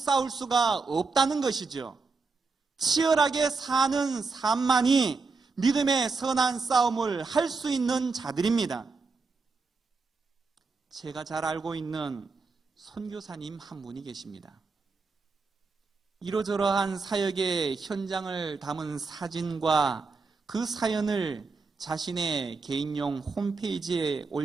수가 없다는 것이죠. 치열하게 사는 삶만이 믿음의 선한 싸움을 할 수 있는 자들입니다. 제가 잘 알고 있는 선교사님 한 분이 계십니다. 이러저러한 사역의 현장을 담은 사진과 그 사연을 자신의 개인용 홈페이지에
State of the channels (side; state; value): left; quieter; 4.3 dB